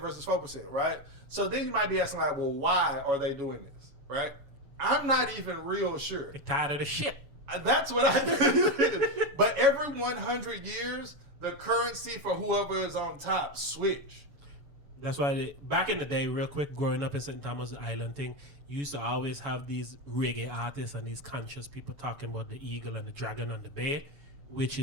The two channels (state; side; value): late; left; 7.0 ms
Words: 4%, right? So then you might be asking like, well, why are they doing this, right? I'm not even real sure. They're tired of the shit. That's what I think. But every 100 years, the currency for whoever is on top switch. That's why back in the day, real quick, growing up in St. Thomas Island thing, you used to always have these reggae artists and these conscious people talking about the eagle and the dragon on the bear, which